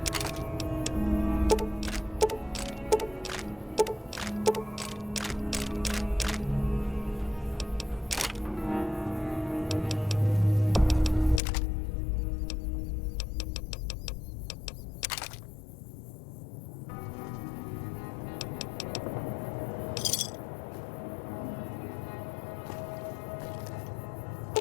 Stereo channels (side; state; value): right; drops out; at 11.4 s